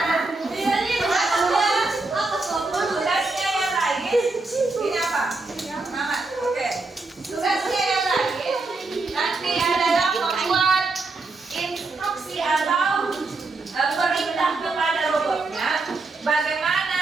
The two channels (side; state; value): left; quieter; 3.5 dB